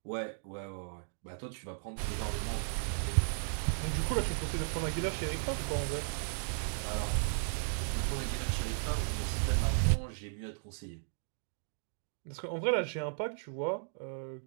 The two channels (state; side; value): silent; left; digital silence